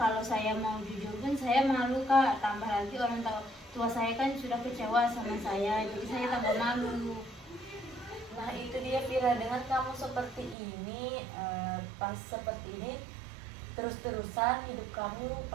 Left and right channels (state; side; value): drops out; left; at 10.6 s